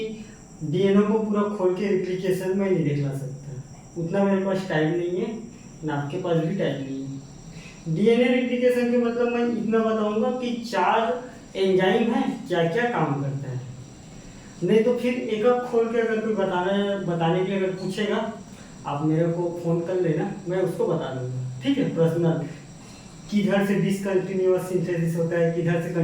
डीएनए को पूरा खोल के रेप्लिकेशन में नहीं दिखला सकता, उतना मेरे पास टाइम नहीं है, ना आपके पास भी टाइम नहीं है। डीएनए रेप्लिकेशन के मतलब मैं इतना बताऊंगा कि 4 एंजाइम है, क्या क्या काम करता है। नहीं तो फिर एक एक खोल के अगर कोई बताने के लिए अगर पूछेगा, आप मेरे को फोन कर लेना, मैं उसको बता दूंगा, ठीक है। पर्सनल किधर से डिसकंटिन्यूअस सिंथेसिस होता है, किधर से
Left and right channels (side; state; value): both; identical; correlation 1.00